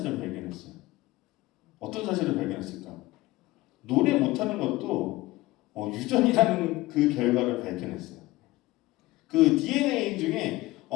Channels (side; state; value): right; quieter; 18.9 dB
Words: 발견했어요. 어떤 사실을 발견했을까? 노래 못하는 것도 유전이라는 그 결과를 발견했어요. 그 DNA 중에